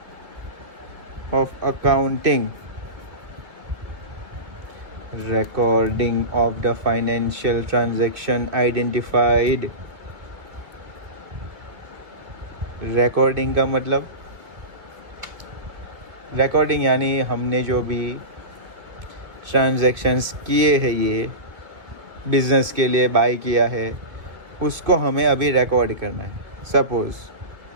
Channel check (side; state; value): left; late; 2.4 ms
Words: of accounting, recording of the financial transaction identified. recording का मतलब, recording यानी हमने जो भी ट्रांजैक्शंस किए हैं, ये बिजनेस के लिए बाय किया है, उसको हमें अभी रिकॉर्ड करना है. सपोज